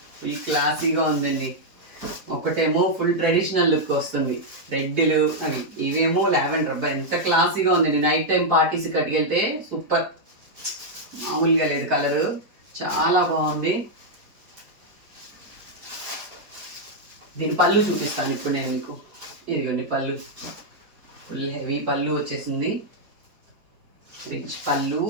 ఫుల్ క్లాసీగా ఉందండి. ఒకటేమో ఫుల్ ట్రెడిషనల్ లుక్ వస్తుంది, రెడ్లు అవి, ఇవేమో లావెండర్. అబ్బా ఎంత క్లాసీగా ఉందండి. నైట్ టైం పార్టీస్ కట్టుకెళ్తే సూపర్, మామూలుగా లేదు కలరు, చాలా బాగుంది. దీని పళ్ళు చూపిస్తాను ఇప్పుడు నేను మీకు. ఇదిగోండి పళ్ళు, ఫుల్ హెవీ పళ్ళు వచ్చేసింది, రిచ్ పళ్ళు.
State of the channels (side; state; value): left; late; 4.5 ms